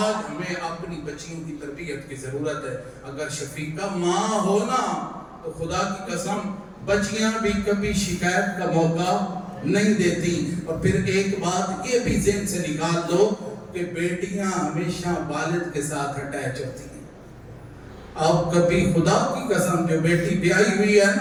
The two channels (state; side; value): identical; both; correlation 1.00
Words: ہمیں اپنی بچیوں کی تربیت کی ضرورت ہے۔ اگر شفیقہ ماں ہونا تو خدا کی قسم بچیاں بھی کبھی شکایت کا موقع نہیں دیتی۔ اور پھر ایک بات یہ بھی ذہن سے نکال دو کہ بیٹیاں ہمیشہ والد کے ساتھ اٹیچ ہوتی ہیں۔ اب کبھی خدا کی قسم جو بیٹی بیائی ہوئی ہے